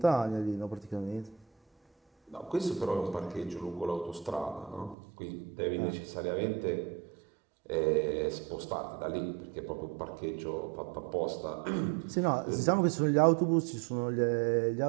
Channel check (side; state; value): left; drops out; at 5.0 s